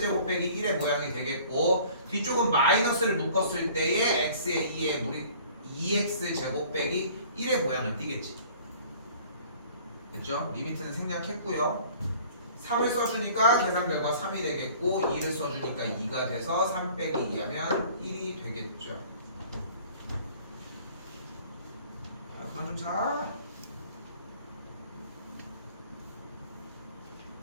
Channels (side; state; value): both; inverted; correlation -0.51